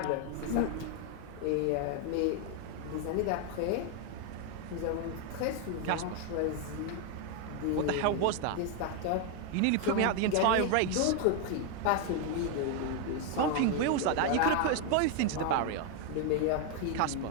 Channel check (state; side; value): different; both; correlation 0.01